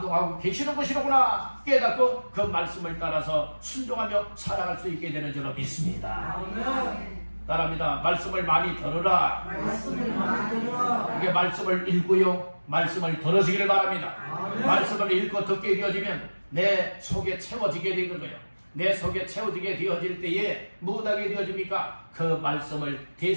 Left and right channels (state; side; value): inverted; both; correlation -1.00